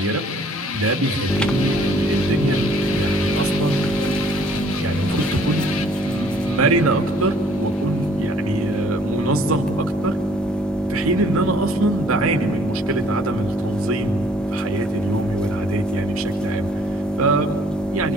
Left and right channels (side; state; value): both; normal; correlation 0.59